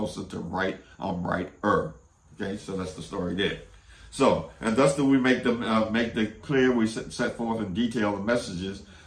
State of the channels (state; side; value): identical; both; correlation 1.00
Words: to right. I'm righter. Okay, so that's the story there. So, and thus do we make the clear, we set forth in detail the messages,